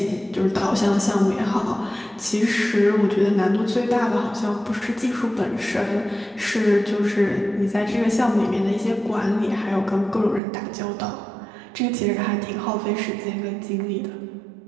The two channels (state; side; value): drops out; left; at 10.4 s